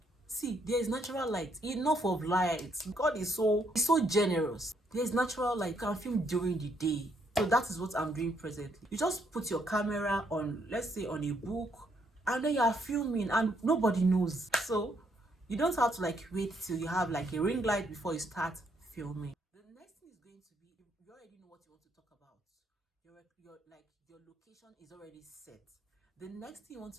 see, there is natural light, enough of light. God is so generous. There's natural light. You can film during the day. So that is what I'm doing presently. You just put your camera on, let's say on a book, and then you are filming and nobody knows. So you don't have to like wait till you have like a ring light before you start filming. The next thing is going to be, you already know what you want to talk about. Your location is already set. The next thing you want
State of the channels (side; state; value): both; normal; correlation 0.72